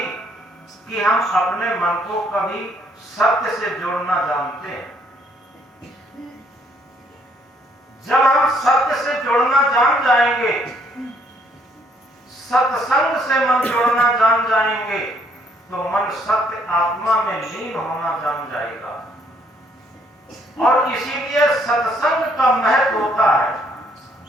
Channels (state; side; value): normal; both; correlation 0.67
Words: कि हम अपने मन को कभी सत्य से जोड़ना जानते हैं। जब हम सत्य से जोड़ना जान जाएंगे, सत्संग से मन जोड़ना जान जाएंगे, तो मन सत्य आत्मा में लीन होना जान जाएगा। और इसीलिए सत्संग का महत्व होता है।